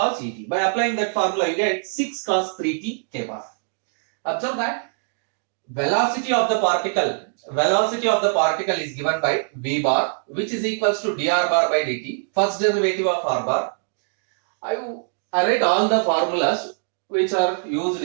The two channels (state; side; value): silent; left; digital silence